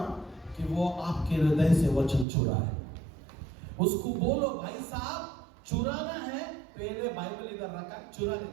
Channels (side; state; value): left; drops out; at 2.2 s